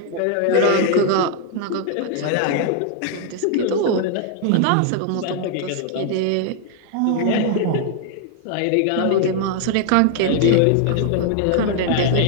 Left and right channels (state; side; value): different; both; correlation 0.00